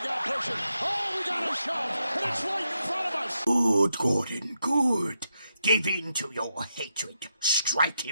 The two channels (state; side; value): inverted; both; correlation -0.83